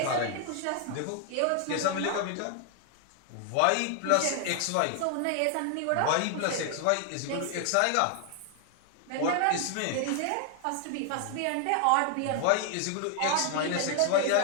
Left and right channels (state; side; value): different; both; correlation 0.00